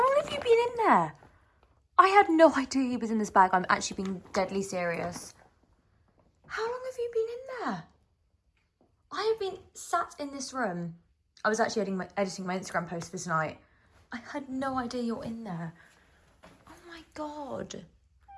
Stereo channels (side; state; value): both; identical; correlation 1.00